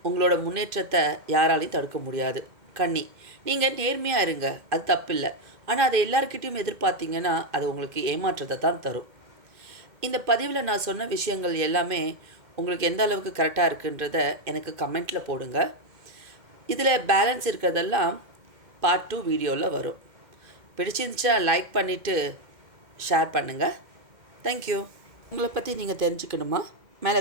உங்களோட முன்னேற்றத்தை யாராலையும் தடுக்க முடியாது. கன்னி, நீங்கள் நேர்மையாக இருங்க, அது தப்பில்லை, ஆனால் அதை எல்லாருக்கிட்டையும் எதிர்பார்த்தீங்கன்னா அது உங்களுக்கு ஏமாற்றத்தை தான் தரும். இந்த பதிவில் நான் சொன்ன விஷயங்கள் எல்லாமே உங்களுக்கு எந்த அளவுக்கு கரெக்டாக இருக்குன்றத எனக்கு கமெண்ட்டில் போடுங்க. இதில் பேலன்ஸ் இருக்கிறதெல்லாம் பார்ட் 2 வீடியோவில் வரும். பிடிச்சிருந்துச்சா லைக் பண்ணிவிட்டு ஷேர் பண்ணுங்கள். தேங்க்யூ. உங்களை பற்றி நீங்கள் தெரிஞ்சுக்கணுமா? மேலே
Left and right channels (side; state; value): left; late; 2.1 ms